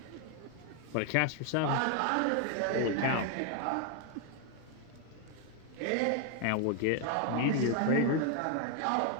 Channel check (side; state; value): both; different; correlation 0.01